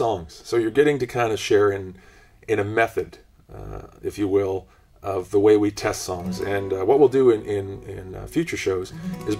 So you're getting to kind of share in a method, if you will, of the way we test songs. And what we'll do in future shows is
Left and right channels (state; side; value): identical; both; correlation 1.00